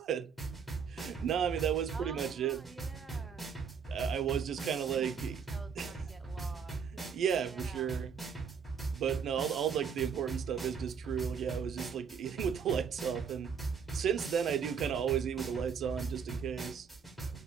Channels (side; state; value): left; quieter; 6.7 dB